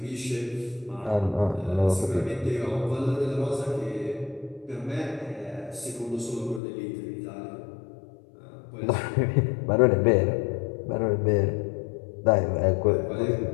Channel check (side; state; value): right; drops out; at 6.6 s